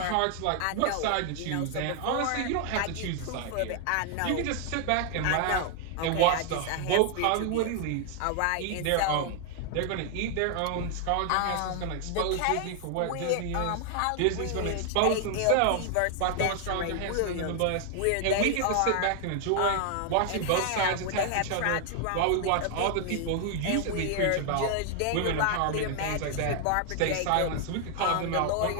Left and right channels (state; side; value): different; both; correlation 0.00